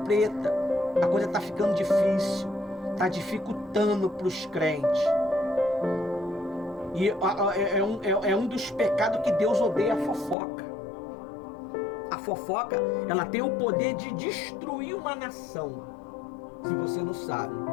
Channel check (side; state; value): right; drops out; at 10.4 s